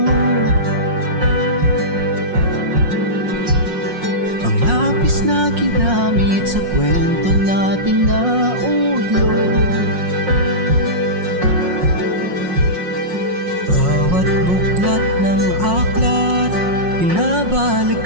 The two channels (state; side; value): late; left; 5.6 ms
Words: Ang lapis na ginamit sa kwento nating naudlot. Bawat buklat ng aklat